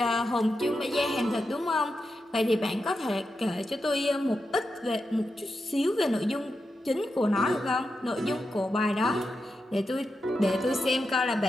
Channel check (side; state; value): both; normal; correlation 0.88